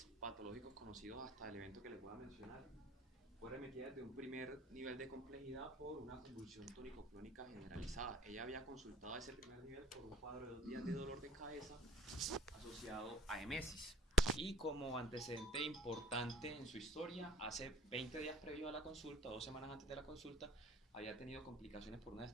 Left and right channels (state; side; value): normal; both; correlation 0.53